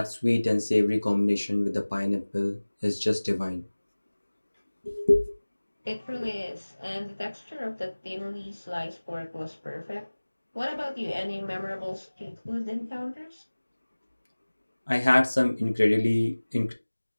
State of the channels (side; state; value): both; inverted; correlation -1.00